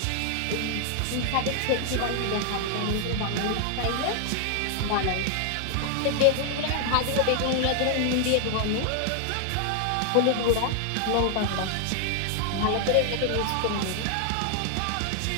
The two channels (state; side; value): different; both; correlation 0.00